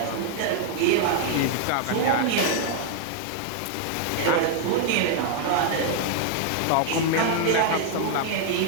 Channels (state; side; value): different; both; correlation 0.00